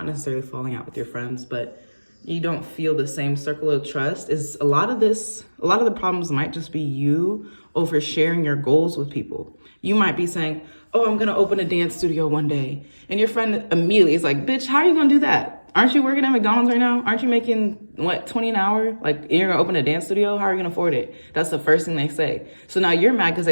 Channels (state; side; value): inverted; both; correlation -1.00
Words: necessarily falling out with your friends, but you don't feel the same circle of trust is a lot of the problems might just be you oversharing your goals with people. You might be saying, oh, I'm going to open a dance studio one day. And your friend immediately is like, bitch, how are you going to do that? Aren't you working at McDonald's right now? Aren't you making, what, $20 an hour? Like, you're going to open a dance studio? How are you going to afford it? That's the first thing they say. So now you're mad because